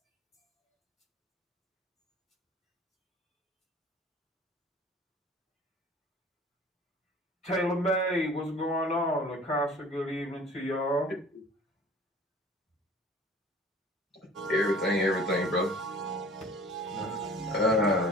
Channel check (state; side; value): normal; both; correlation 0.47